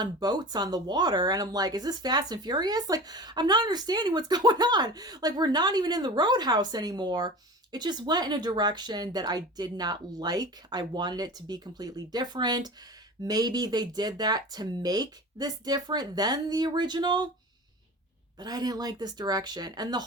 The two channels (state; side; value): normal; both; correlation 0.35